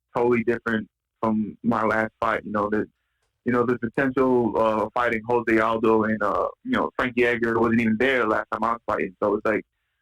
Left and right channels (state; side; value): identical; both; correlation 1.00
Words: totally different from my last fight. You know, there's potential fighting Jose Aldo and Frankie Edgar wasn't even there last time I was fighting. So it's like